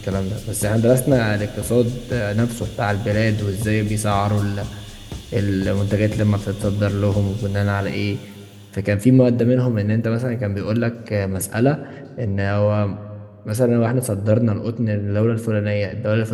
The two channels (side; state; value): both; identical; correlation 1.00